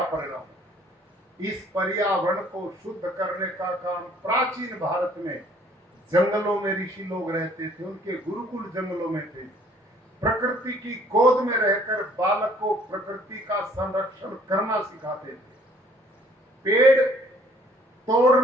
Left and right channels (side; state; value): both; normal; correlation 0.58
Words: परिणाम। इस पर्यावरण को शुद्ध करने का काम प्राचीन भारत में जंगलों में ऋषि लोग रहते थे, उनके गुरुकुल जंगलों में थे। प्रकृति की गोद में रहकर बालक को प्रकृति का संरक्षण करना सिखाते थे। पेड़